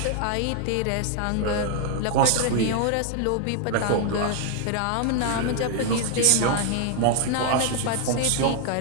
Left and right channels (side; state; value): both; different; correlation 0.00